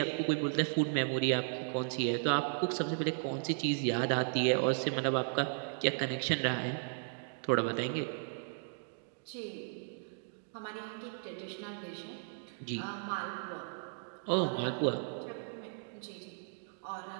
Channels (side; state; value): left; silent; digital silence